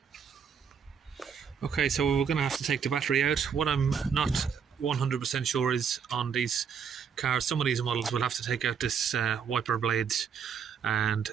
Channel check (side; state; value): left; quieter; 6.9 dB